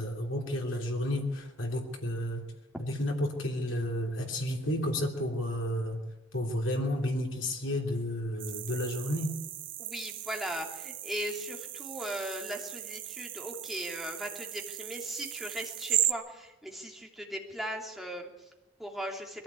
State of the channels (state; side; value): normal; both; correlation 0.52